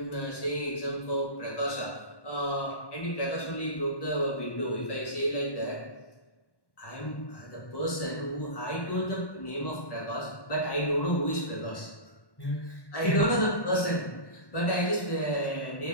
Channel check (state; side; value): late; right; 1.1 ms